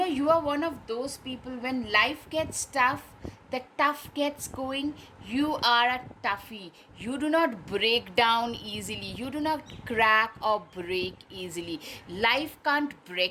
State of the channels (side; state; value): both; identical; correlation 1.00